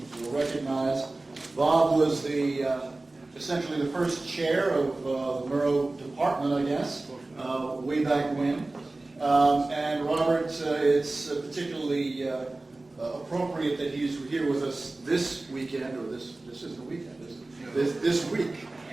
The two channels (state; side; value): quieter; left; 3.0 dB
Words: recognize. Bob was essentially the first chair of the Murrow department, I guess, way back when. And Robert, it's particularly appropriate that he's here with us this weekend, or this isn't a weekend, is it? This week,